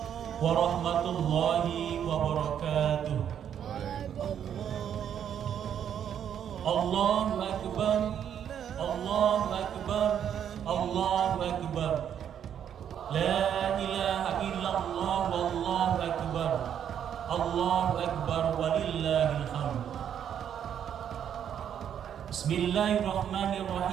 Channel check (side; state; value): left; quieter; 9.1 dB